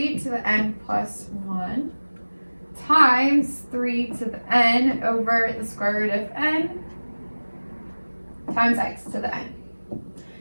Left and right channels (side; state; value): both; inverted; correlation -1.00